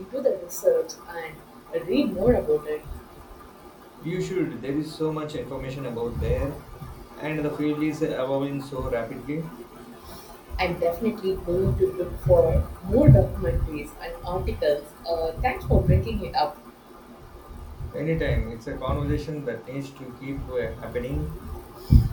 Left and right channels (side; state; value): both; identical; correlation 1.00